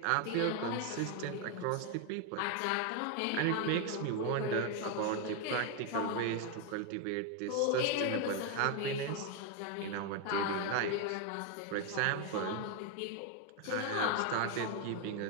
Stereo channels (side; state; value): both; different; correlation 0.01